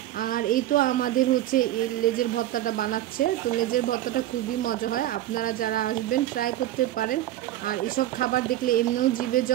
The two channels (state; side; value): quieter; left; 13.9 dB